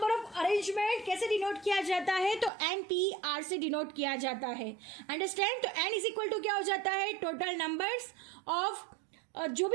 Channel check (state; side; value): drops out; left; at 2.5 s